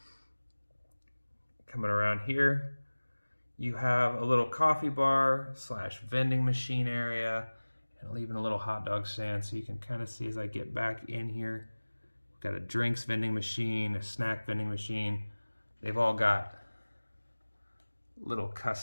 Coming around here, you have a little coffee bar / vending machine area, and even a little hot dog stand. So you can kind of see as I get back in here, we've got a drinks vending machine, a snack vending machine. They've all got little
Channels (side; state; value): both; inverted; correlation -1.00